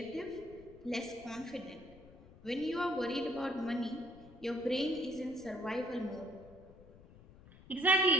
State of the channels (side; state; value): left; noise; rumble, 21 dB below the sound